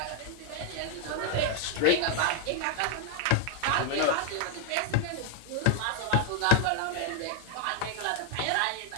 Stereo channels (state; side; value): different; both; correlation 0.00